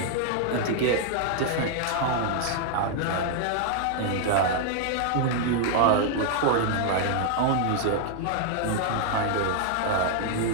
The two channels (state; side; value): different; both; correlation 0.00